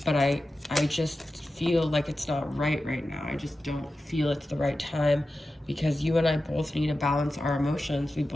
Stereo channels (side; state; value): both; normal; correlation 0.93